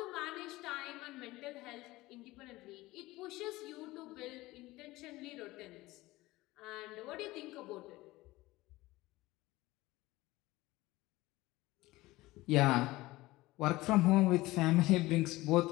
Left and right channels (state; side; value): quieter; right; 19.1 dB